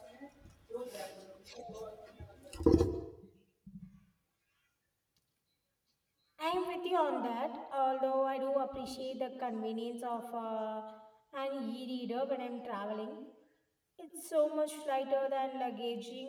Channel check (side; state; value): both; identical; correlation 1.00